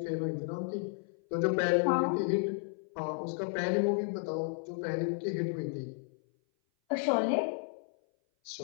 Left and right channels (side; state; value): right; silent; 56 dB below the other